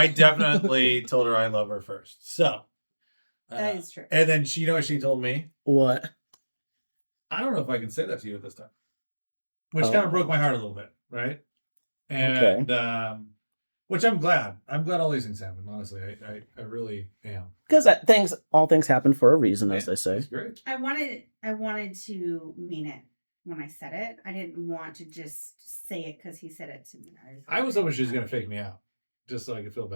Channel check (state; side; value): inverted; both; correlation -1.00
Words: definitely told her I love her first. So That is true. And then she, what she told me? What? I don't know if I can say that to you at this time. Which kind of broke my heart a little bit, right? And which I'm glad. I'm glad all these things happen, honestly. I really am. Because all things happen for a reason, as they say. It's great. I wanted to mean it when I said it. I didn't want to just say it because he said it to me. I was hoping she was going to fake me out, just so I could feel